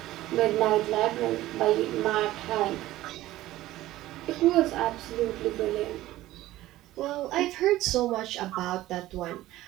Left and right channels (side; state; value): left; quieter; 15.8 dB